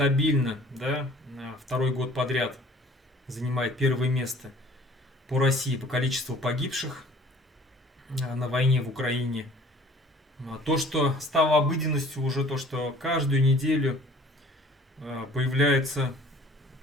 да, второй год подряд занимает первое место по России по количеству погибших на войне в Украине. То, что стало обыденностью уже, то, что каждую неделю появляется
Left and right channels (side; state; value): both; normal; correlation 0.51